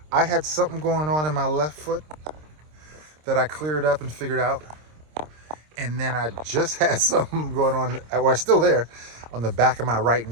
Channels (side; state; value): left; late; 26 ms